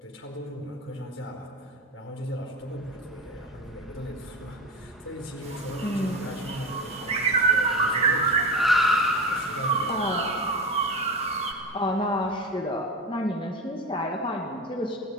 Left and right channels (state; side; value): normal; both; correlation 0.25